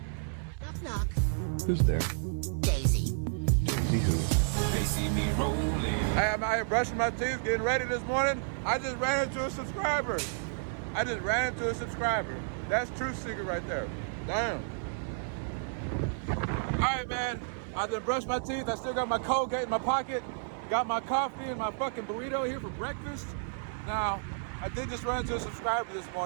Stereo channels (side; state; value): left; silent; 57 dB below the other